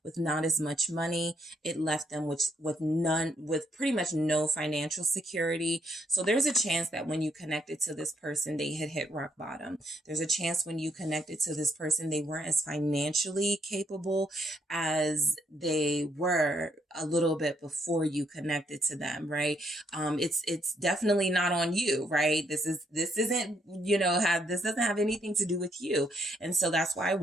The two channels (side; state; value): both; normal; correlation 0.74